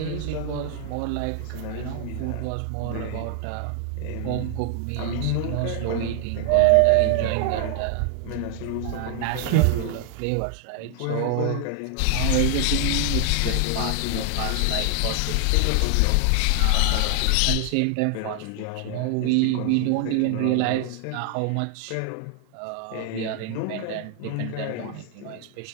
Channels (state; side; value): different; both; correlation 0.00